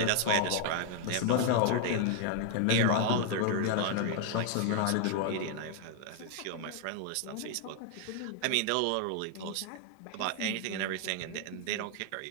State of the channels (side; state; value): both; different; correlation 0.00